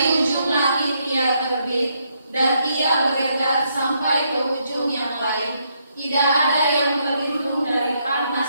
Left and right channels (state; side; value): inverted; both; correlation -0.75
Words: ujung langit ia terbit, dan ia beredar sampai ke ujung yang lain. Tidak ada yang terlindung dari